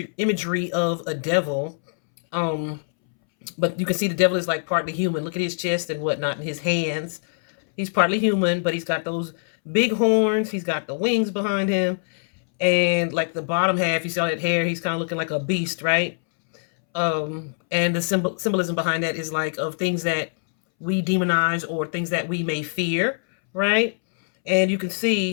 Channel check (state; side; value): silent; right; 63 dB below the other